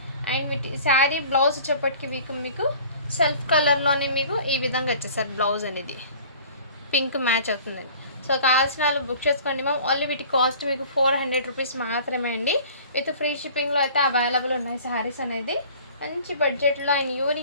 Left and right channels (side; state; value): both; inverted; correlation -0.47